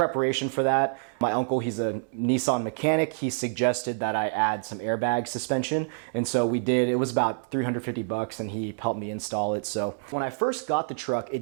for that, my uncle, he's a Nissan mechanic, he suggested that I add some airbag suspension. And so we did. It was about $350 and he helped me install it. So when I first got the truck,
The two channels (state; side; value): silent; left; 60 dB below the other